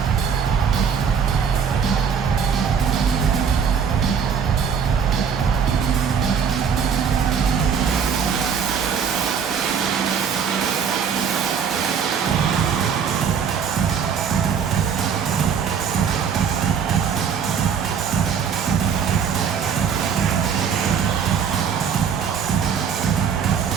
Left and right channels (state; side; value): quieter; left; 6.9 dB